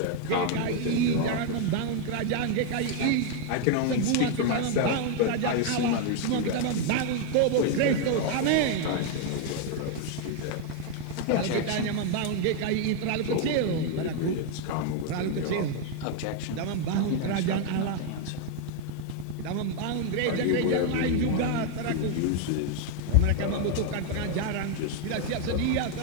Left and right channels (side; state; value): both; different; correlation 0.00